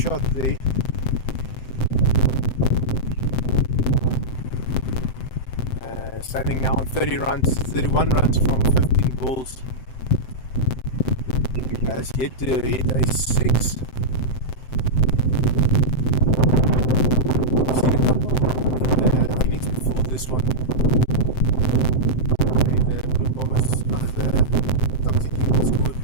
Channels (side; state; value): right; late; 7.8 ms